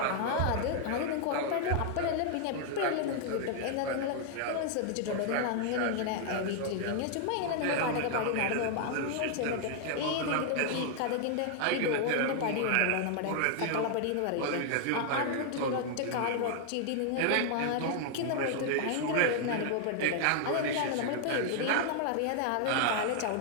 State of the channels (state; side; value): different; both; correlation 0.00